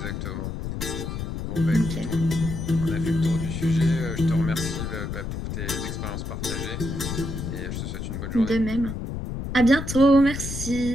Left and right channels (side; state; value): left; noise; rumble, 5 dB below the sound